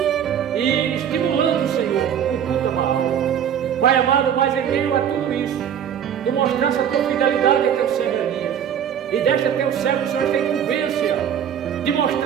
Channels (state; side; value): quieter; left; 8.9 dB